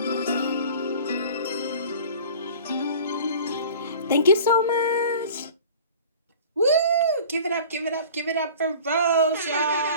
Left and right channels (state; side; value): inverted; both; correlation -0.43